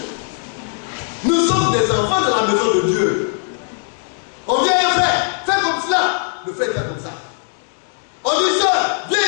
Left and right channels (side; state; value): right; silent; 58 dB below the other